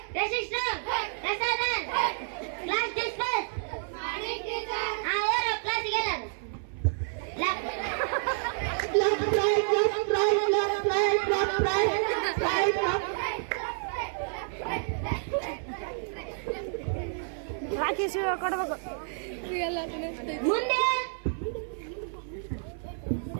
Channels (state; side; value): silent; left; 58 dB below the other